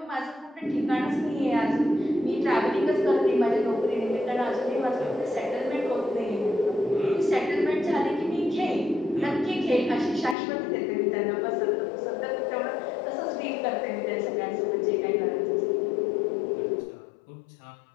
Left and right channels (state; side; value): drops out; right; at 10.4 s